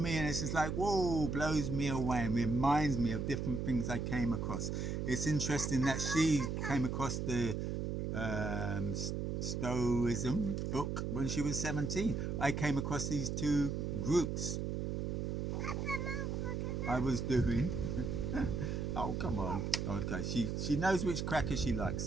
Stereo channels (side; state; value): right; noise; hum, 1 dB below the sound